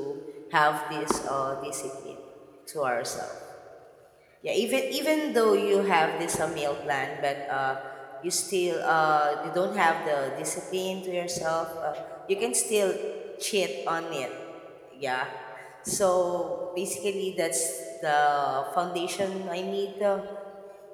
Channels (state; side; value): identical; both; correlation 1.00